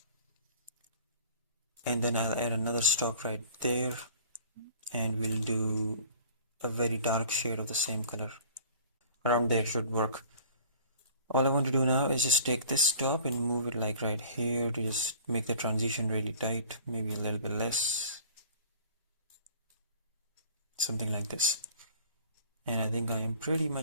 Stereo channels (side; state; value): both; inverted; correlation -0.48